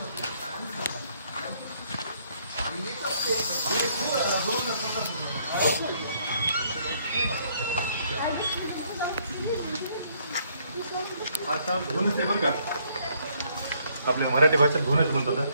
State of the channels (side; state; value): both; inverted; correlation -0.68